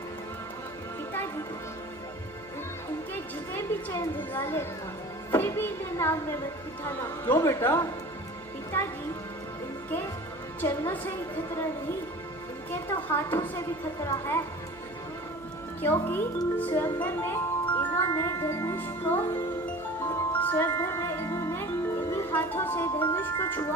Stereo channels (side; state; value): right; noise; hum, 24 dB below the sound